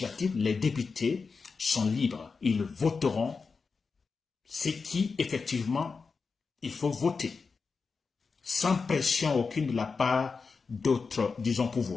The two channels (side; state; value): right; quieter; 4.8 dB